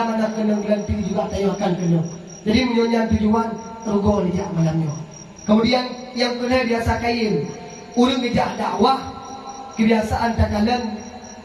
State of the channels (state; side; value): identical; both; correlation 1.00